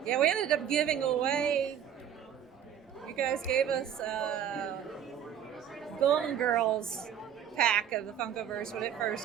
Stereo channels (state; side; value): quieter; left; 9.2 dB